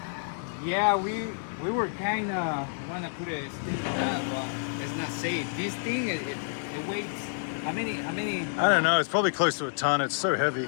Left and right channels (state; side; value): silent; right; digital silence